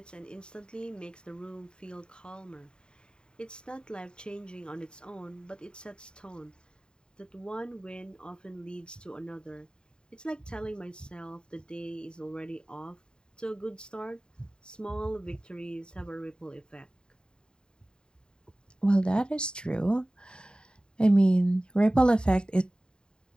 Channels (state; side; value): late; right; 0.049 ms